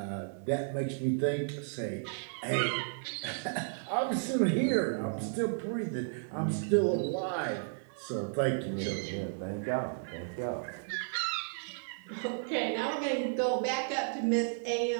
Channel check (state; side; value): silent; left; digital silence